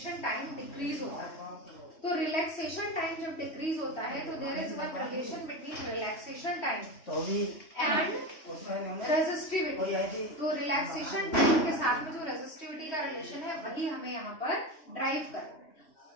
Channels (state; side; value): late; right; 3.1 ms